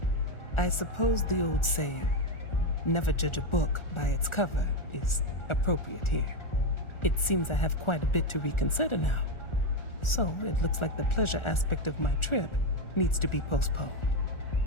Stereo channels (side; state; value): right; late; 1.4 ms